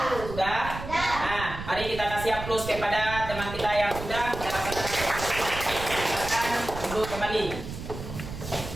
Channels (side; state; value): right; noise; rumble, 9 dB below the sound